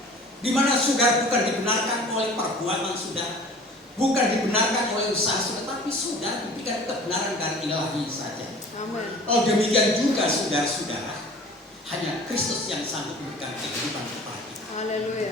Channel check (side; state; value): both; normal; correlation 0.44